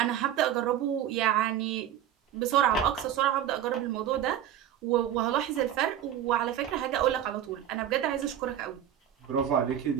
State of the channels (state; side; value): quieter; left; 10.6 dB